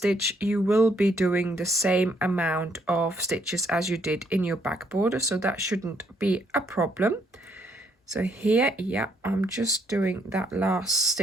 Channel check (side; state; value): both; normal; correlation 0.71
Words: you will be doing the same amount of stitches as you did in your back border, so that shouldn't be a problem. So here, yeah, I'm just doing that last